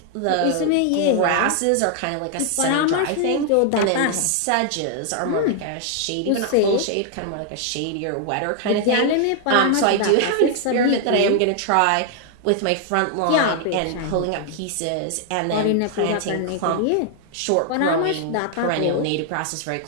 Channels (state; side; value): different; both; correlation 0.00